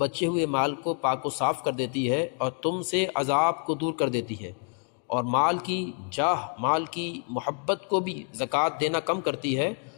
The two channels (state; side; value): quieter; right; 38.6 dB